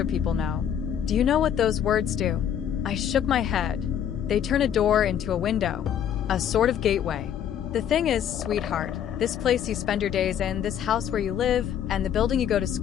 people know. Do you know what those words do? I shook my head. They turn a door into a window, a sort of gateway. The thing is, sweetheart, this place you spend your days in, this house where you live, and the building you go to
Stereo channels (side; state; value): right; quieter; 9.3 dB